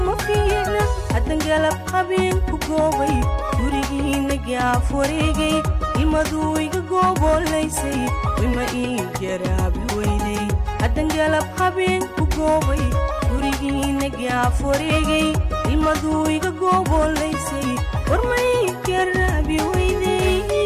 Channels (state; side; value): identical; both; correlation 1.00